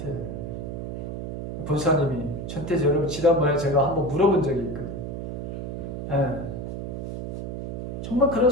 본사님이 전태지 여러분 지난번에 제가 한번 물어본 적이 있거든요. 정말 그런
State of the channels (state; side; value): noise; right; hum, 6 dB below the sound